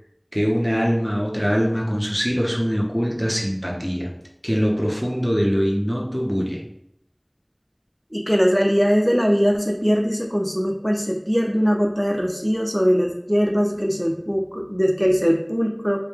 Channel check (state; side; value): identical; both; correlation 1.00